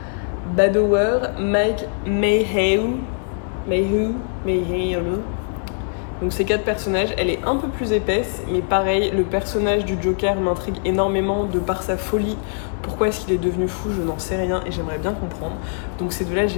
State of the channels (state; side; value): silent; right; digital silence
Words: Badower, Mike Mayhew. Donc ces 4 personnages, elle est un peu plus épaisse, mais pareil, le personnage du Joker m'intrigue énormément de par sa folie. Pourquoi est-ce qu'il est devenu fou, je n'en sais rien, et j'aimerais bien comprendre. Donc ces 2-là,